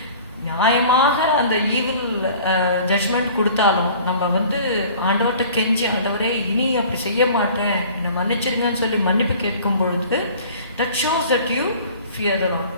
நியாயமாக அந்த ஈவில் ஜட்ஜ்மெண்ட் கொடுத்தாலும் நம்ம ஆண்டவர்கிட்ட கெஞ்சி, ஆண்டவரே இனி அப்படி செய்ய மாட்டேன், என்னை மன்னிச்சிருங்கன்னு சொல்லி மன்னிப்பு கேட்கும் பொழுது that shows that you fear the Lord.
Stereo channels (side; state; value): both; inverted; correlation -0.47